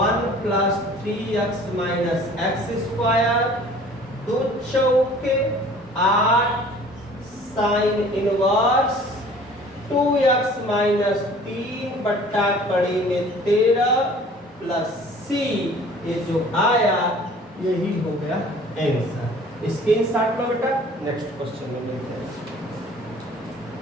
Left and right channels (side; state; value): both; normal; correlation 0.49